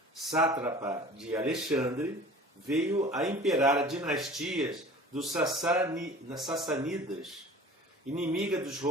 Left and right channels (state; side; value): normal; both; correlation 0.43